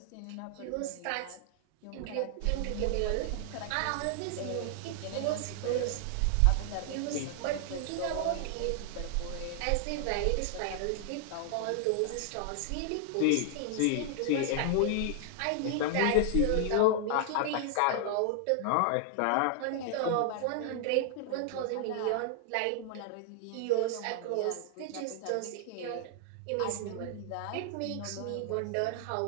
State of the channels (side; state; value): both; different; correlation 0.00